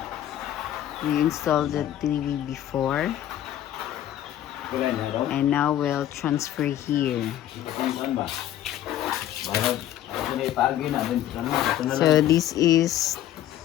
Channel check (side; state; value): right; quieter; 12.0 dB